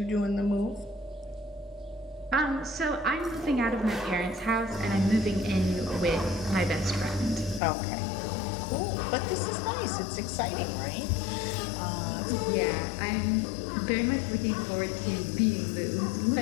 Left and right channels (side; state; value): right; drops out; at 7.6 s